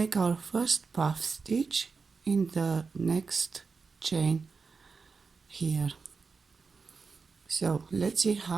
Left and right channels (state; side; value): quieter; left; 4.8 dB